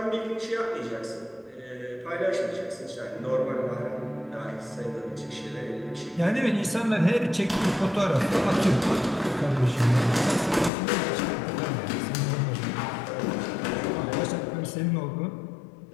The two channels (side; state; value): right; drops out; at 10.7 s